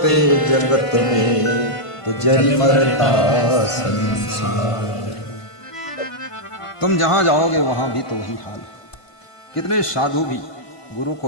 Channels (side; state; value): right; late; 1.5 ms